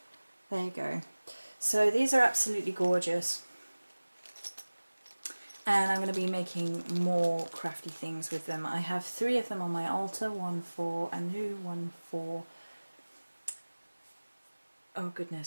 There you go. So these are absolutely gorgeous. And I'm going to be making more crafty things with them. I have 3 of them on my altar, one for Anu, one for... Oh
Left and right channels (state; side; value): inverted; both; correlation -1.00